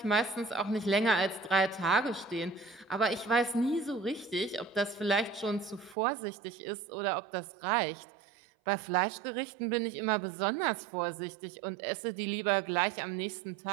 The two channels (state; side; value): drops out; left; at 6.0 s